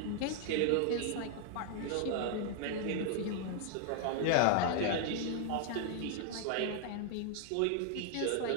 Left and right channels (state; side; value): different; both; correlation 0.00